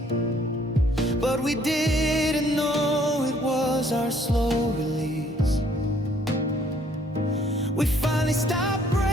but we didn't know it was our slow release. We finally stopped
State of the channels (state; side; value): normal; both; correlation 0.63